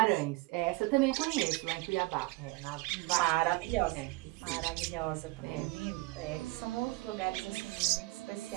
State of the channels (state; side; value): quieter; left; 22.5 dB